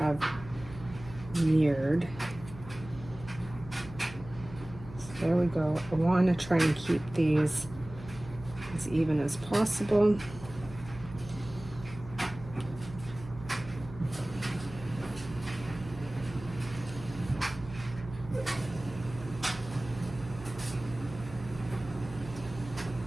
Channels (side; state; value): right; noise; hum, 15 dB below the sound